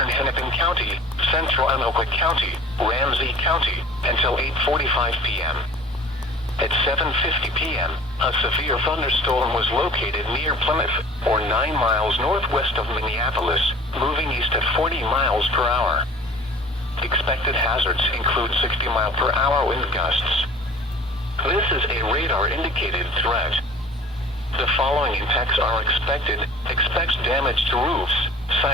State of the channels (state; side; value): normal; both; correlation 0.45